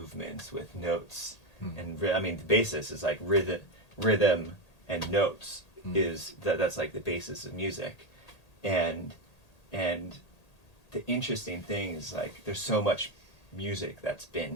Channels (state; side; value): late; right; 1.8 ms